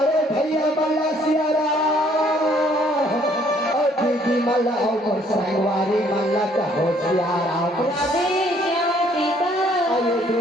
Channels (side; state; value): both; normal; correlation 0.63